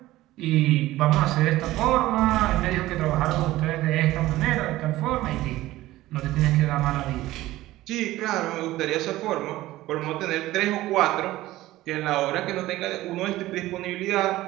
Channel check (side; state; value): left; quieter; 16.5 dB